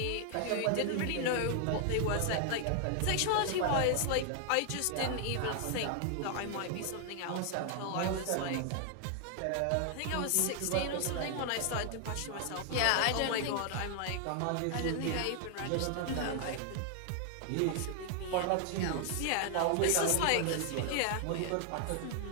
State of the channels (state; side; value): different; both; correlation 0.00